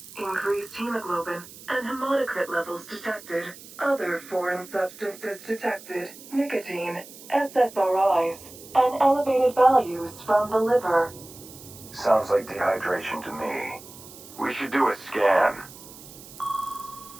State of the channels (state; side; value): noise; right; hiss, 18 dB below the sound